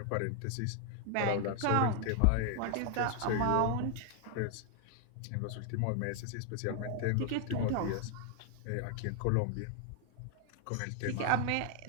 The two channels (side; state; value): both; different; correlation 0.00